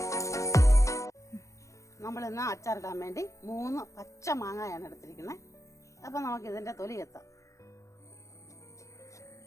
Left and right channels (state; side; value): late; right; 0.15 ms